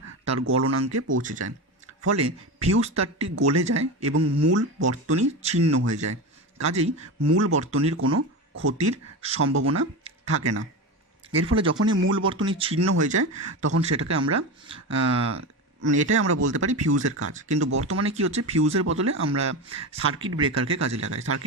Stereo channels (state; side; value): normal; both; correlation 0.22